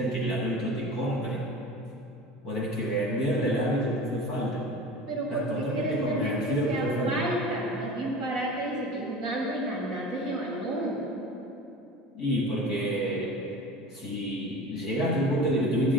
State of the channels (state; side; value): normal; both; correlation 0.36